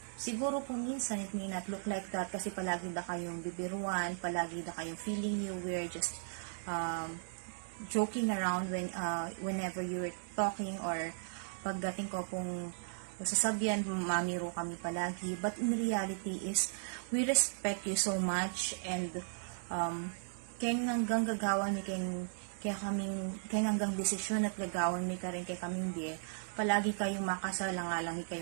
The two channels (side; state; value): left; silent; digital silence